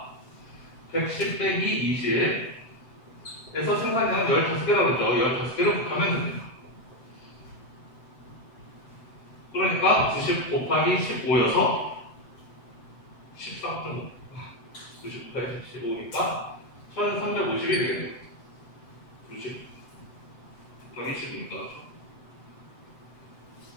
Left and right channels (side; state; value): right; late; 7.9 ms